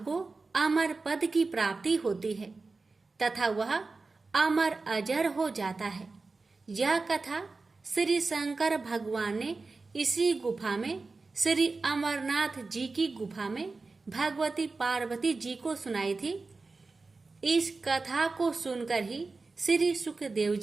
को अमर पद की प्राप्ति होती है तथा वह अमर अजर हो जाता है। यह कथा श्री शंकर भगवान ने इसी गुफा में श्री अमरनाथ जी की गुफा में भगवती पार्वती जी को सुनाई थी। इस कथा को सुनकर ही श्री सुखदेव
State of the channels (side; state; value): left; quieter; 3.9 dB